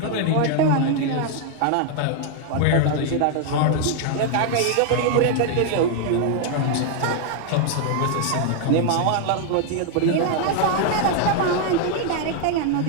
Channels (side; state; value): both; different; correlation 0.00